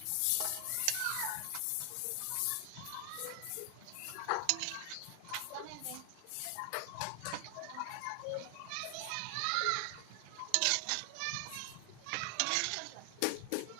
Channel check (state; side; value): different; both; correlation 0.00